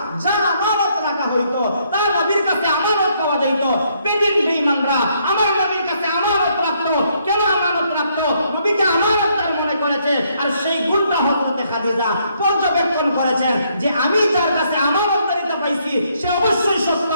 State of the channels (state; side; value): inverted; both; correlation -0.71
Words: যা আমানত রাখা হইতো তা নবীর কাছে আমানত পাওয়া যাইত। বেদিন বেঈমানরা আমার নবীর কাছে আমানত রাখতো। কেন আমানত রাখতো? নবীকে আমানতদার মনে করেছে। আর সেই গুণটা হযরতে খাদিজা পর্যবেক্ষণ করেছেন যে আমি যার কাছে আমানতদারিতা পাইছি সে অবশ্যই সত্য,